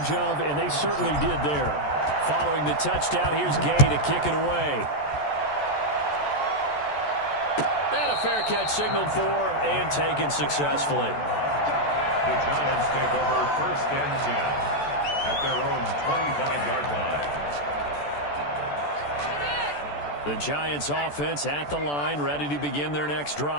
of, and they certainly did there. Following the touchdown, here's Gay to kick it away. And a fair catch signaled for and taken successfully. The Giants take over 1st and 10 at their own 25-yard line. The Giants offense at the line, ready to begin their next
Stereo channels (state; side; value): late; right; 14 ms